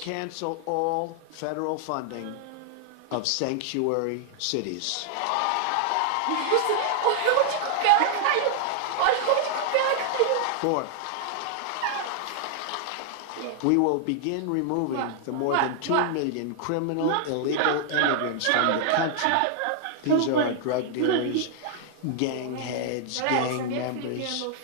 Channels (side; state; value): both; different; correlation 0.00